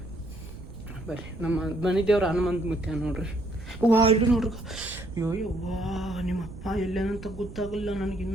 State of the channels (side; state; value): right; noise; rumble, 13 dB below the sound